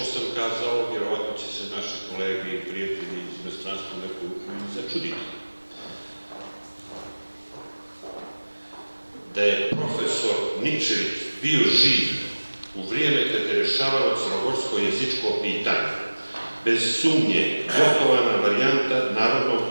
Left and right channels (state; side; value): inverted; both; correlation -1.00